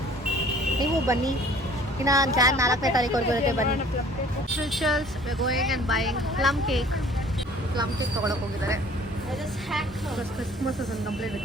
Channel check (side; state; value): both; normal; correlation 0.52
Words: ನೀವು ಬನ್ನಿ. ಇನ್ನು ಜಾನ್ 4ನೇ ತಾರೀಕುವರೆಗೂ ಇರುತ್ತೆ, ಬನ್ನಿ. Specials we are going and buying plum cake ತೊಗೊಳಕ್ಕೆ ಹೋಗಿದ್ದಾರೆ. Christmas is complete